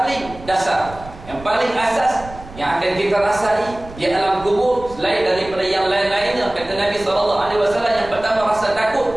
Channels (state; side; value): noise; right; rumble, 17 dB below the sound